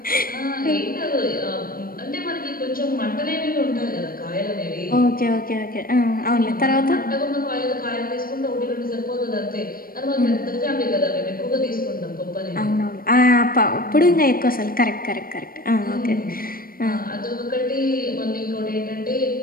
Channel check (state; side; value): late; right; 0.42 ms